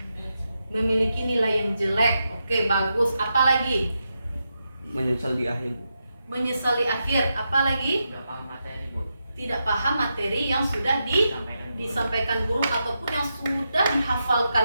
memiliki nilai yang jelek? Oke, bagus. Apa lagi? Menyesal di akhir. Menyesali akhir. Apa lagi? Nggak paham materi Bu. Tidak paham materi yang sudah disampaikan guru ataupun yang sudah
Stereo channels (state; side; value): inverted; both; correlation -0.86